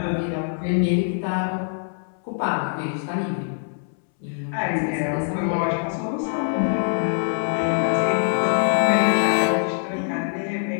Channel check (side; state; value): right; silent; 63 dB below the other